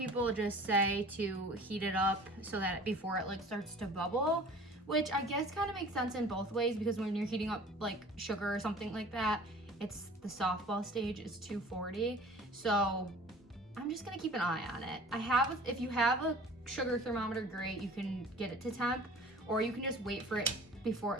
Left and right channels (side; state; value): both; normal; correlation 0.45